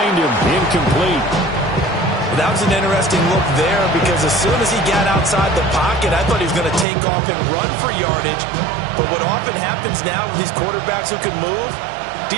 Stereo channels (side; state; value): left; drops out; at 6.9 s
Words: him, incomplete. That was an interesting look there because as soon as he got outside the pocket, I thought he was going to take off and run for yardage. But what often happens now with these quarterbacks who can move,